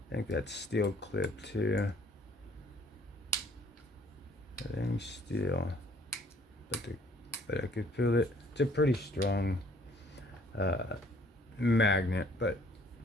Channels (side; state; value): both; normal; correlation 0.59